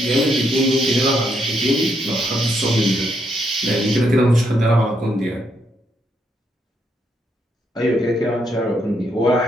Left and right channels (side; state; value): both; normal; correlation 0.77